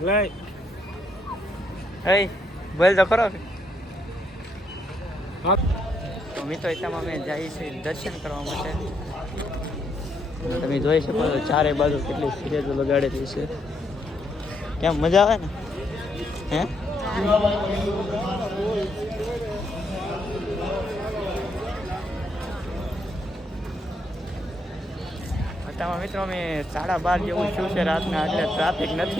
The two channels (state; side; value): normal; both; correlation 0.76